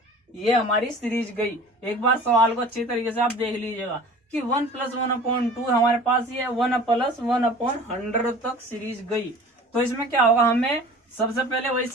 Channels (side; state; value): both; normal; correlation 0.43